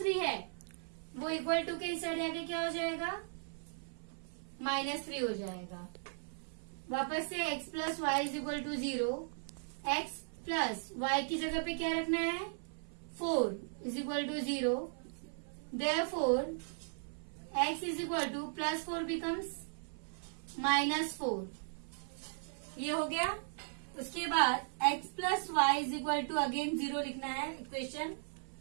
है वो = के इस साइड आके क्या हो जाएगा, -3 हो जाएगा। वापस से x + y = 0, x + y की जगह पे क्या रखना है, 4 = 0। Therefore x = +4 becomes -4। ये हो गया। उसके बाद x plus y is equal to again 0 लिखना है इक्वेशन।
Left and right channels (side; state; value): left; silent; 53 dB below the other